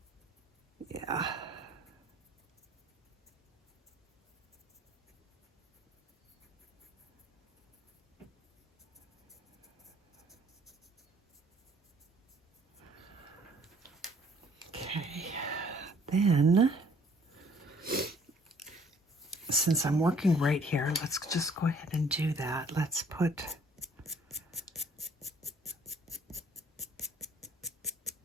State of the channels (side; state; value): both; normal; correlation 0.59